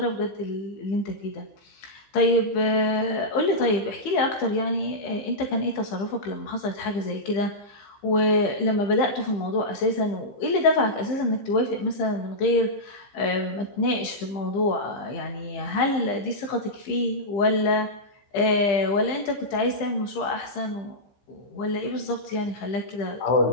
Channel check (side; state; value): right; late; 15 ms